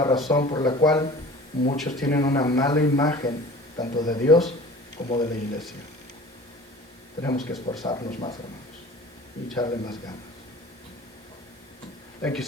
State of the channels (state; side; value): normal; both; correlation 0.42